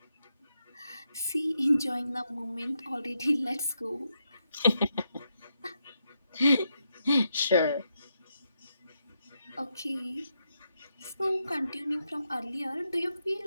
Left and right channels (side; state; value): both; inverted; correlation -0.82